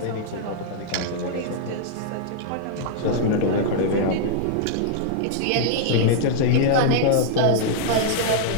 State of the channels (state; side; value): different; both; correlation -0.01